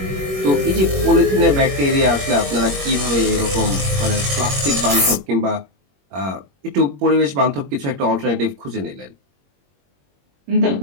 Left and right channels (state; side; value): late; left; 21 ms